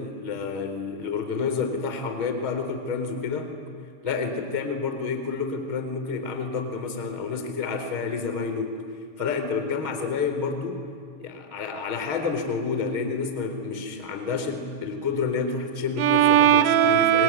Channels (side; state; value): left; late; 6.3 ms